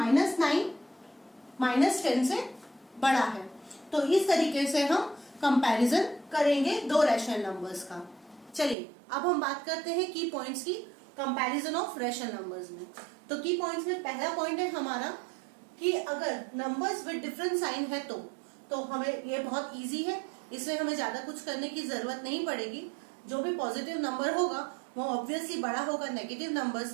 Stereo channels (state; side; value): drops out; left; at 8.8 s